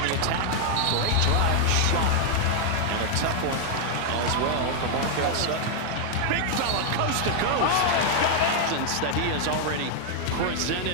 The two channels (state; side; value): different; both; correlation 0.00